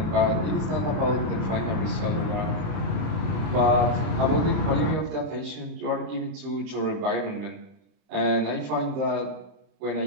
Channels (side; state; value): left; late; 31 ms